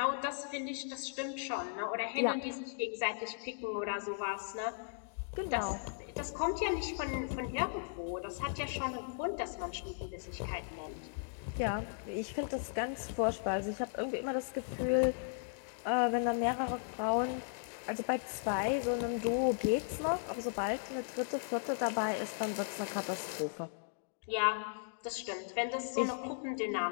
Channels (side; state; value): right; silent; digital silence